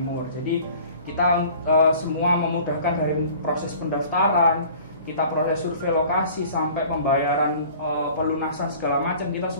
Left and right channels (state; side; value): inverted; both; correlation -0.47